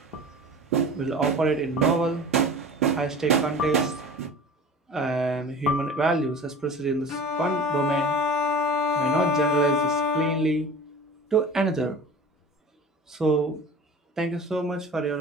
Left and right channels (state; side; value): normal; both; correlation 0.39